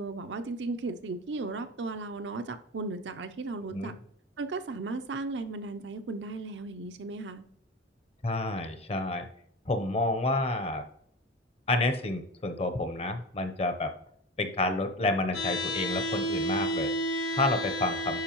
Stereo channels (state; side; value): normal; both; correlation 0.26